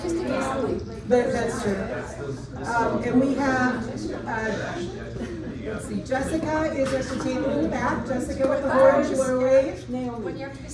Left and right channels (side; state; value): both; identical; correlation 1.00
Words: But that's true. And we have, let's see, Jessica is at the table in the back. Jessica with the horns, you want to wave?